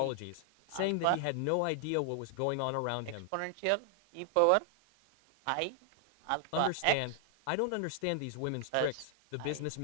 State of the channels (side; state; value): both; different; correlation 0.00